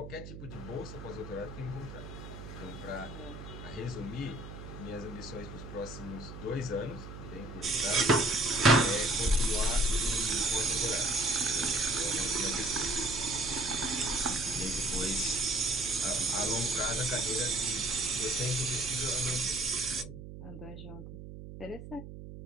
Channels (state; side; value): noise; right; hum, 12 dB below the sound